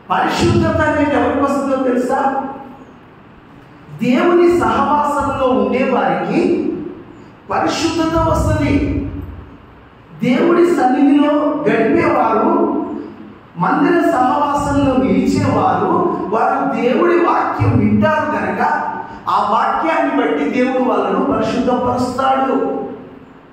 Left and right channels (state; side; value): identical; both; correlation 1.00